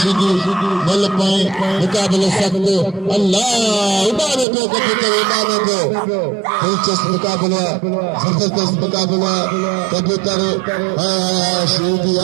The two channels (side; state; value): left; drops out; at 4.5 s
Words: बल पाए मुकाबले सकते अल्लाह उड़ाने को कबूतर उड़ाने को दिलचस्प मुकाबला जबरदस्त मुकाबला कबूतर सीधी